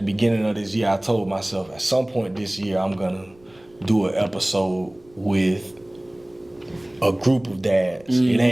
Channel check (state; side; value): noise; right; rumble, 29 dB below the sound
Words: beginning of this year, I told myself at some point this year, I'm going to do an episode with a group of dads. It